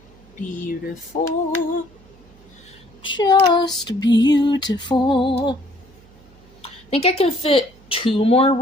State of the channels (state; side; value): noise; right; hum, 27 dB below the sound